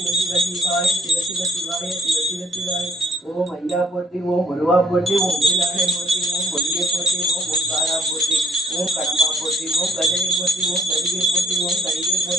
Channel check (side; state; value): both; normal; correlation 0.61